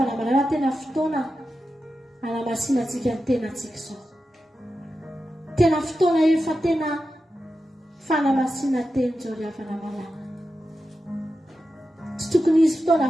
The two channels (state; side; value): normal; both; correlation 0.91